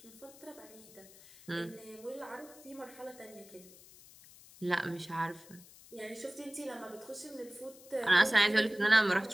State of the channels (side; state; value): left; noise; hiss, 21 dB below the sound